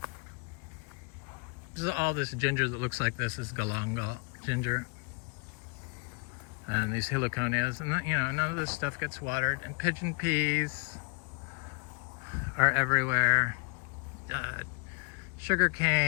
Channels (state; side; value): quieter; right; 33.3 dB